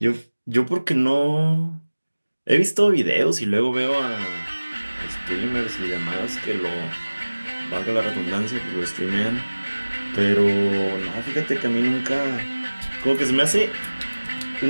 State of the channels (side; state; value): both; inverted; correlation -1.00